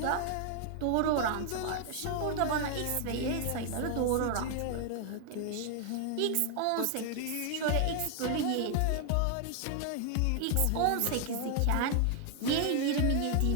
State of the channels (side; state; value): both; different; correlation 0.00